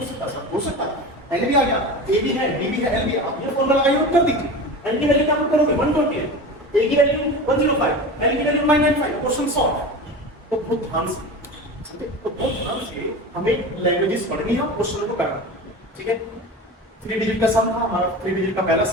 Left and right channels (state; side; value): normal; both; correlation 0.30